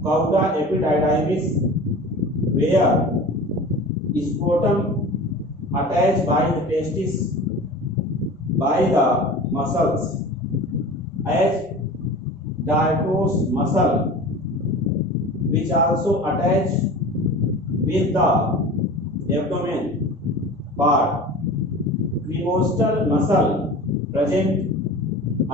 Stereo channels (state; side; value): normal; both; correlation 0.36